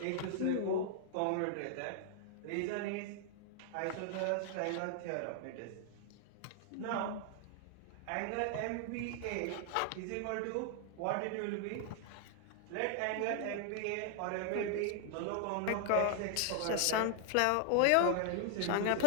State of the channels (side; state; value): both; different; correlation 0.00